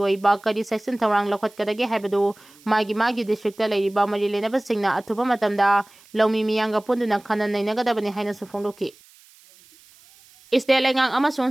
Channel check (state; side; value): noise; right; hiss, 27 dB below the sound